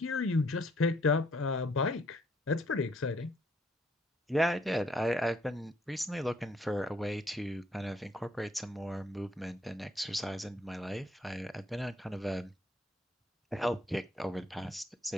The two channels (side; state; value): both; normal; correlation 0.66